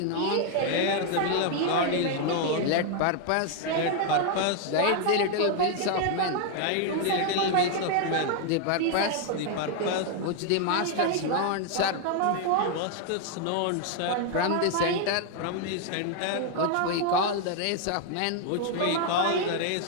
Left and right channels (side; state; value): both; different; correlation 0.00